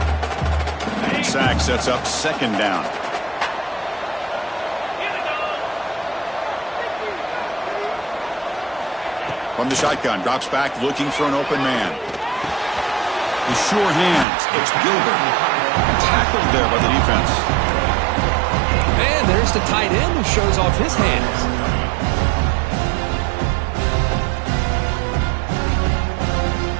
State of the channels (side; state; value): left; drops out; at 14.2 s